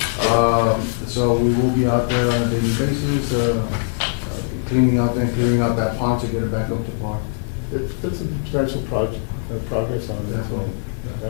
So we will be out there on a daily basis, cleaning out and clearing out that pond to get it back up to par. It's a substantial progress on that, so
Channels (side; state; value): right; silent; digital silence